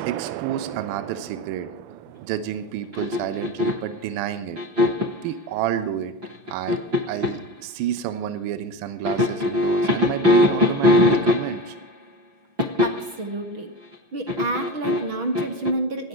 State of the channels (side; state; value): left; late; 6.2 ms